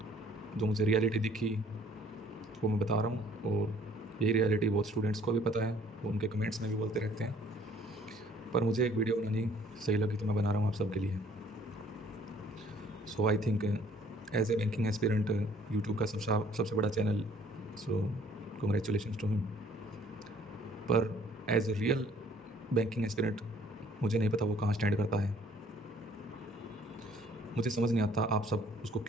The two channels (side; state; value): both; normal; correlation 0.58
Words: जो मुझे रियलिटी दिखी, वो मैं बता रहा हूँ। और यही रियलिटी बहुत स्टूडेंट्स को भी पता है, वो उनके कमेंट्स में भी बोलते रहते हैं, पर मुझे एक वीडियो बनानी सही लगी तो मैं बना रहा हूँ आप सबके लिए। I think as a banking aspirant YouTube का सबसे बड़ा चैनल, कॉन्ग्रेचुलेशन टू हिम। पर as a real banking aspirant मुझे नहीं पता वो कहाँ स्टैंड करता है। मुझे समझ नहीं आता आप सब उसको